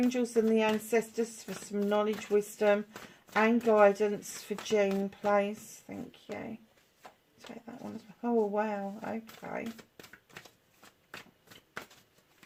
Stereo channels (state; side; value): identical; both; correlation 1.00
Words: and the ancestors for some knowledge, wisdom and guidance for June, please. Thank you. Take that one as well. Oh, wow. Okay.